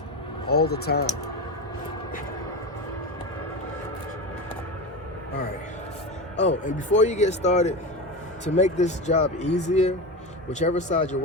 all the time. All right. Oh, and before you get started, to make this job easier, whichever side you're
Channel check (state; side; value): normal; both; correlation 0.22